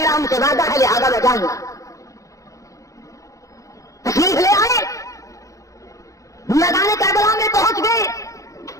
ان سے وعدہ ہے، لہذا میں جاؤں گا۔ تشریف لے آئے، میدان کربلا میں پہنچ گئے،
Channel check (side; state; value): right; late; 0.16 ms